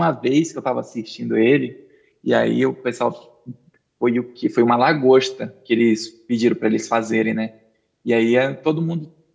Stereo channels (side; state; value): both; identical; correlation 1.00